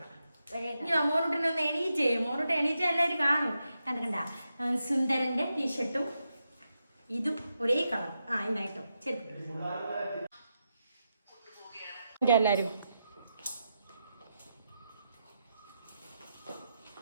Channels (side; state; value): both; inverted; correlation -0.86